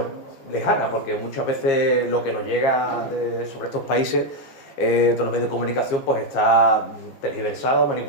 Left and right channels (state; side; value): late; right; 15 ms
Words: lejana, porque muchas veces lo que nos llega sobre estos países, todos los medios de comunicación, pues está tergiversado,